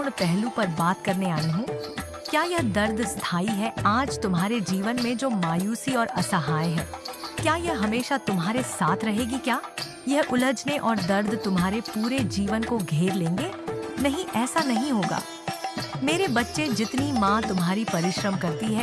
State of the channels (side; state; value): both; identical; correlation 1.00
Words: पहलू पर बात करने आई हूँ। क्या यह दर्द स्थायी है? आज तुम्हारे जीवन में जो मायूसी और असहाय है, क्या यह हमेशा तुम्हारे साथ रहेगी? क्या यह उलझने और दर्द तुम्हारे पूरे जीवन को घेर लेंगे? नहीं, ऐसा नहीं होगा मेरे बच्चे। जितनी माँ तुम्हारी परिश्रम करती